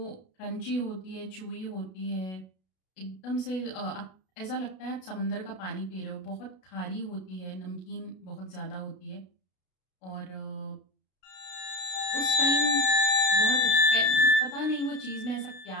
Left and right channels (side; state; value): right; late; 32 ms